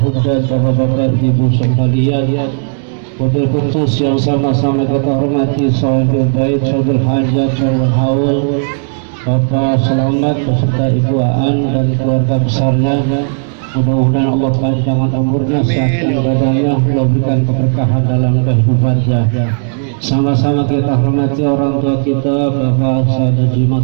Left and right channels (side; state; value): left; silent; digital silence